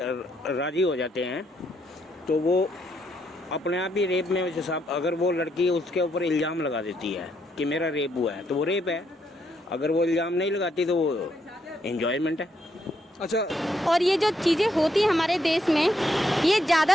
हो जाते हैं तो वो अपने आप ही रेप में हिसाब, अगर वो लड़की उसके ऊपर इल्ज़ाम लगा देती है कि मेरा रेप हुआ है तो वो रेप है, अगर वो इल्ज़ाम नहीं लगाती तो वो एंजॉयमेंट है। अच्छा, और ये जो चीज़ें होती हैं हमारे देश में, ये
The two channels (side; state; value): both; normal; correlation 0.76